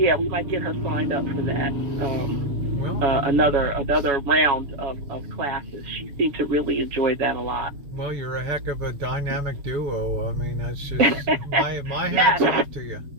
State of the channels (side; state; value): left; late; 7.2 ms